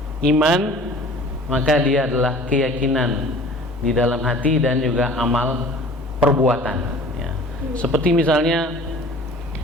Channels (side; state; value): both; normal; correlation 0.46